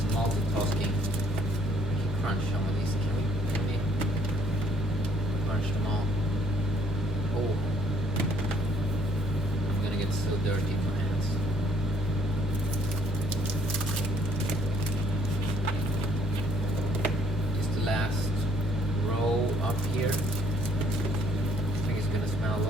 multitasking. We can crunch some of these. Can we crunch them all? Oh, I'm gonna get so dirty in my hands. Last row up here. I think it's gonna smell a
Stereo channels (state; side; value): normal; both; correlation 0.64